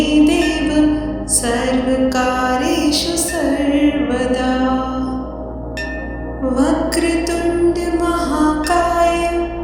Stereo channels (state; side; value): identical; both; correlation 1.00